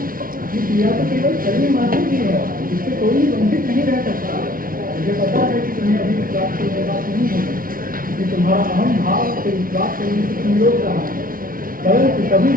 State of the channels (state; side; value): late; left; 0.41 ms